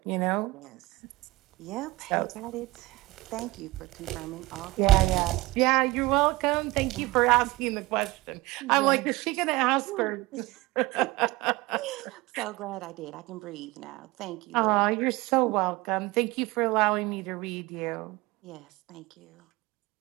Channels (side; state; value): left; quieter; 20.6 dB